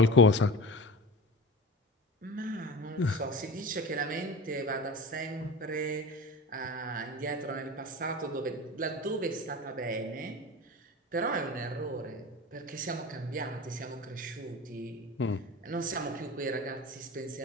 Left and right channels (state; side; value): normal; both; correlation 0.31